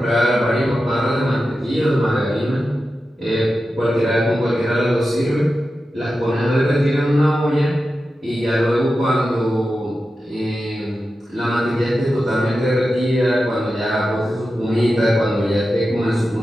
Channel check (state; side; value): normal; both; correlation 0.92